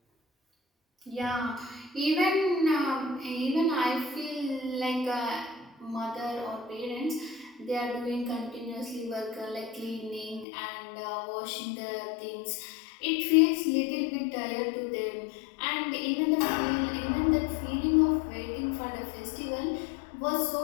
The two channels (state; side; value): drops out; right; at 10.5 s